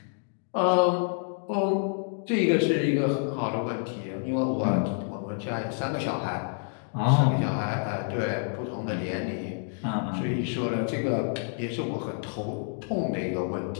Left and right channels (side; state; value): right; silent; 59 dB below the other